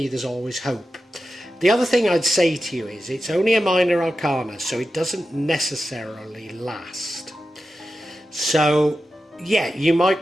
there's always hope. The other thing I'd say to you is it's only a minor arcana, so it doesn't necessarily last. So, yeah, you might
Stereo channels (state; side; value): normal; both; correlation 0.92